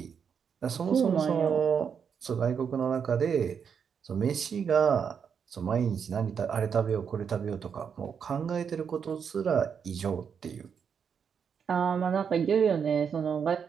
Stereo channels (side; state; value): left; quieter; 7.0 dB